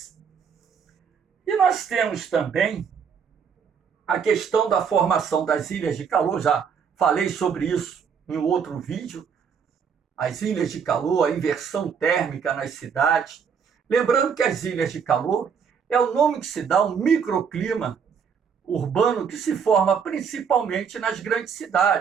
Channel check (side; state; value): left; quieter; 6.7 dB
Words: E nós temos também a questão da formação das ilhas de calor, já falei sobre isso em outro vídeo, as ilhas de calor, a inversão térmica nas cidades. Lembrando que as ilhas de calor é o nome que se dá ao microclima urbano que se forma principalmente nas grandes